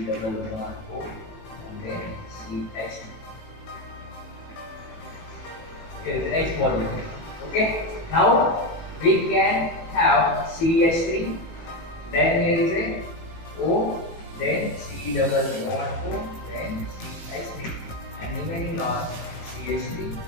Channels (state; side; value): late; right; 18 ms